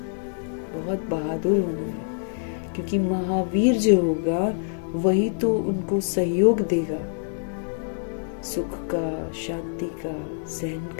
बहुत बहादुर होना है। क्योंकि महावीर जो होगा वही तो उनको सहयोग देगा, सुख का, शांति का, सहन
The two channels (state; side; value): silent; right; digital silence